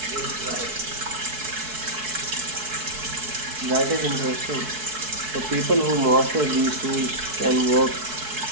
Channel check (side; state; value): left; late; 4.6 ms